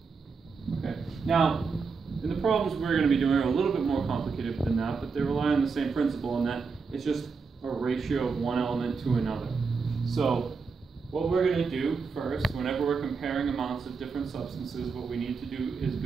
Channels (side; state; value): left; quieter; 5.0 dB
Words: Okay. Now, in the problems we're going to be doing are a little bit more complicated than that, but they rely on the same principle in that it's just a ratio of one element to another. So what we're going to do first, whenever we're comparing amounts of different substances, what we need to do is